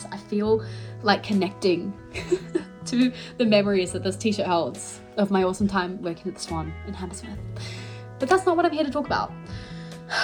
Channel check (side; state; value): both; identical; correlation 1.00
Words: I feel like connecting to the memories that this t-shirt holds of my awesome time working at the Swan in Hammersmith. But that's not what I'm here to talk about.